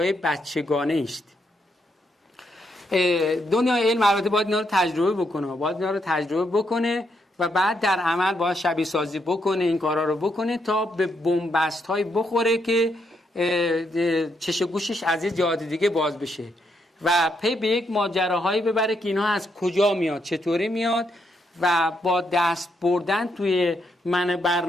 بچگانه است. دنیای علم البته باید اینا رو تجربه بکنه، و بعد در عمل باید شبیه سازی بکنه، این کارا رو بکنه تا به بنبست های بخوره که چش و گوشش از یه جهات دیگه باز بشه و پی به یک ماجراهایی ببره که اینها از کجا میاد، چطوری میاد، و با دست بردن توی من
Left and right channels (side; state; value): both; normal; correlation 0.78